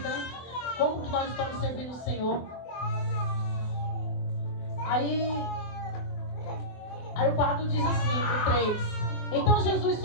né? Como que nós estamos servindo o Senhor. Aí o 4 diz assim, o 3. Então Jesus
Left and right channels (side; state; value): right; late; 24 ms